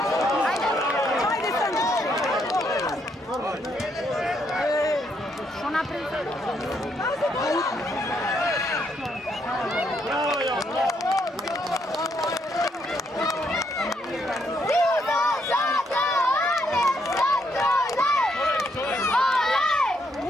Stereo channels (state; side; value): normal; both; correlation 0.74